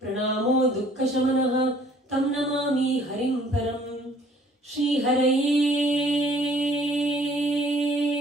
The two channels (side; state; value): both; normal; correlation 0.57